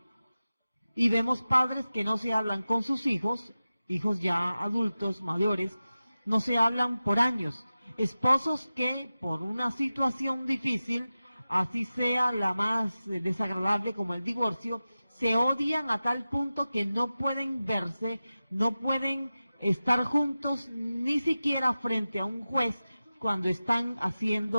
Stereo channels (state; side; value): inverted; both; correlation -0.95